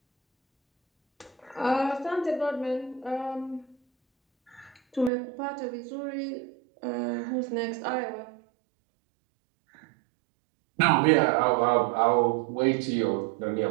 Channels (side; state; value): left; drops out; at 5.1 s